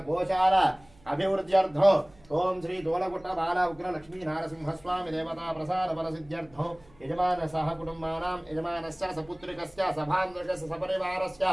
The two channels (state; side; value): noise; right; hum, 27 dB below the sound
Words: गोचार अभिवृद्ध्यर्थं ओम श्री दोलगुट्ट बाला उग्र लक्ष्मी नारसिंहस्वामी देवता प्रसाद फलसिद्ध्यर्थं यजमान सह कुटुंबानां यजमानस्य सपुत्रिकस्य सभान्विकस्य सपरिवारस्य